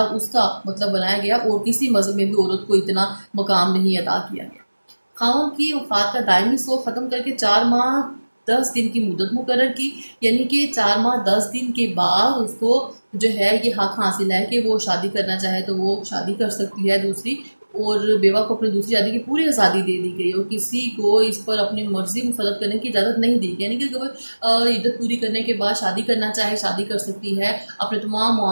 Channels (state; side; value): inverted; both; correlation -1.00